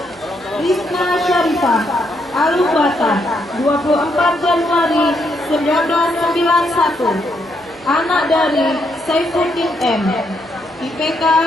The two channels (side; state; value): right; noise; hum, 28 dB below the sound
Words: Rizna Syarifah, Alubata, 24 Januari 1991. Anak dari Saifuddin M, IPK